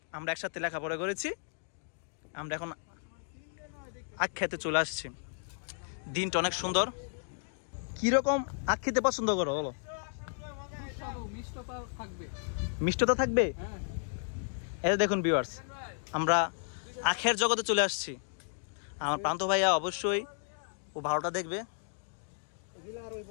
আমরা একসাথে লেখাপড়া করেছি। আমরা এখন আখ খেতে চলে আসছি। দিনটা অনেক সুন্দর। কিরকম আখ খেতে পছন্দ করো বলো? মিষ্টতা থাকবে। এই দেখুন ভিউয়ার্স, আমরা আখের জগতে চলে আসছি। আমার প্রান্ত ভাইয়া অবশ্যই ও ভালোটা দেখবে।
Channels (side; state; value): right; silent; digital silence